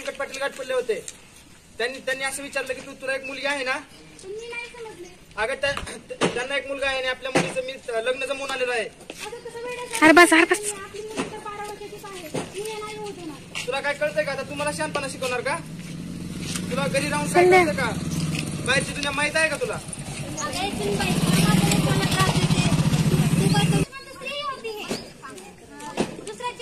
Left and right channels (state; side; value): identical; both; correlation 1.00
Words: पाटील गाठ पडले होते. त्यांनी असं विचारलं की तुला एक मुलगी आहे ना? तुम्ही नाही समजले. अगं त्यांना एक मुलगा आहे आणि आपल्या मुलीचं मी लग्न जमवून आलेलं आहे. तुला काय कळतंय का? आता तुम्हाला शहाणपणा शिकवणार का? तुला घरी राहून काय कळतं का? बाहेरची दुनिया माहित आहे का तुला? दुसऱ्या